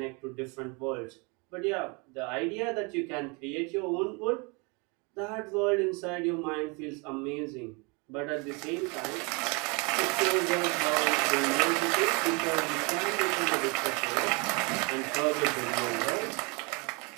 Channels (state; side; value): quieter; left; 30.6 dB